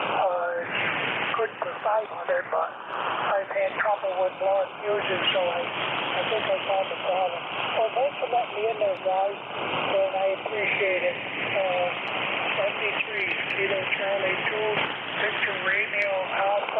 Good for 500, but I've had trouble with blowing fuses, so I think I found the problem. Well, thanks for letting me in there, guys, and I appreciate it. NJ2US Studio Charlie 2, Victor Radio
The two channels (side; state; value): both; identical; correlation 1.00